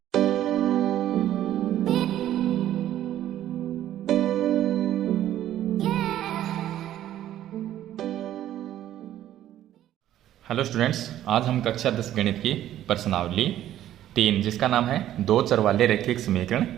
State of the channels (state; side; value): quieter; left; 12.4 dB